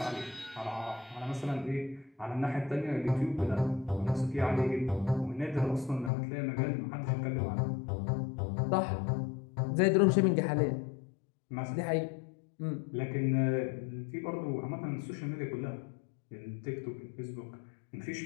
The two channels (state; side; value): drops out; right; at 6.1 s